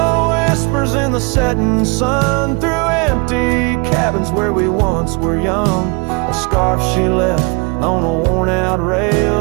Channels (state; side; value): quieter; left; 30.8 dB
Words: whispers in the setting sun through empty cabins where we once were young. A scarf she left on a worn-out